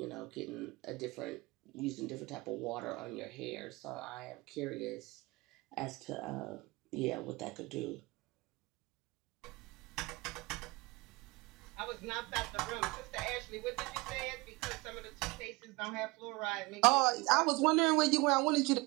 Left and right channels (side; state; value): left; quieter; 23.9 dB